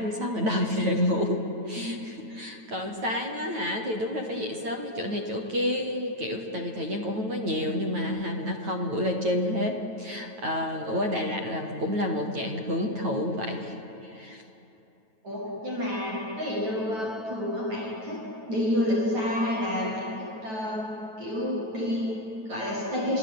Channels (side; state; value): left; late; 9.2 ms